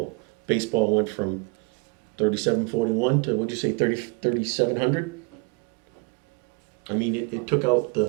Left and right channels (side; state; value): left; quieter; 29.2 dB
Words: Baseball went from 3741 to, what'd you say, 3700? I mean, it took out the, Oh,